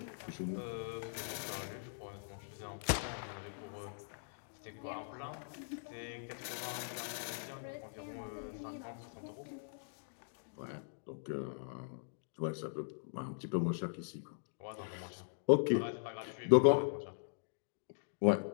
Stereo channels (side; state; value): right; silent; digital silence